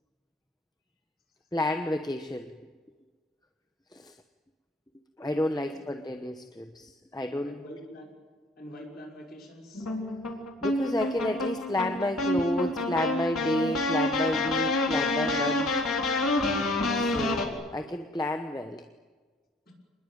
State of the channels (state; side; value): normal; both; correlation 0.57